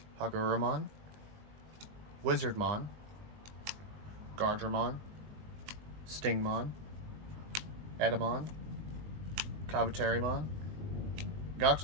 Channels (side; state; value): left; late; 20 ms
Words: Hagururamon, Wizardmon, Gardramon, Stingmon, Edamon, Kabuterimon,